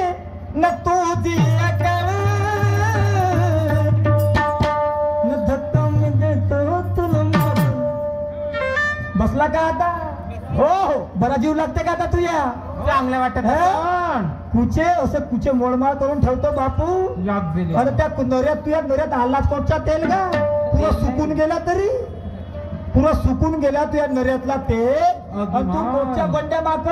न तुझी अकल न धक्का मी देतो तुला मारून. बसला का आता? हो हो. बरा जीव लागते का आता तुया? चांगलं वाटत कुचे असं कुचे मोडमाळ करून ठेवतो बापू. अरे त्या नऱ्यात तुझ्या नऱ्यात आला कोणचा तेल का पुरा सुकून गेला तरी पुरा सुकून गेला तुझ्या नऱ्यातला तेल. तू कोणच्या बंड्या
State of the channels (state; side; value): identical; both; correlation 1.00